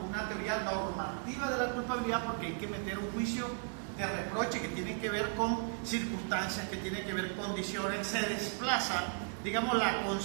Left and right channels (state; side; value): silent; left; 54 dB below the other